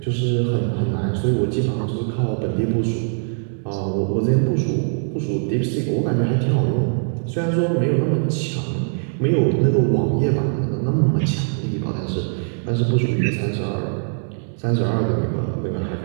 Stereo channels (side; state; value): left; silent; digital silence